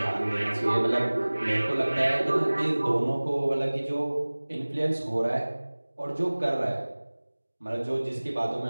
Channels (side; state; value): both; inverted; correlation -1.00